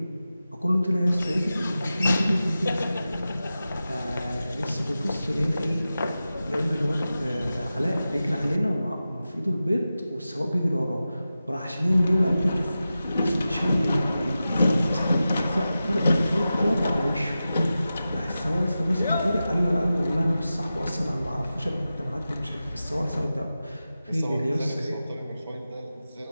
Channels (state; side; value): inverted; both; correlation -0.93